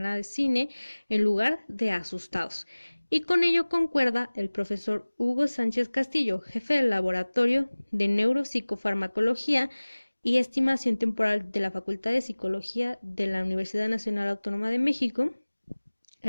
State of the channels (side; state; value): both; inverted; correlation -1.00